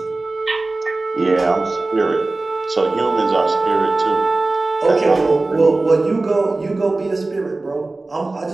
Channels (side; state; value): left; quieter; 3.2 dB